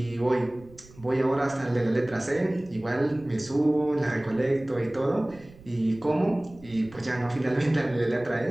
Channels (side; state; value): right; noise; rumble, 22 dB below the sound